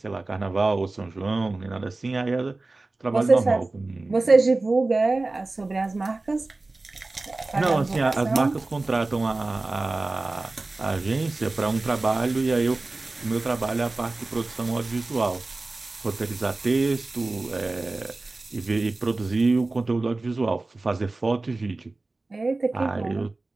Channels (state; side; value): quieter; left; 3.2 dB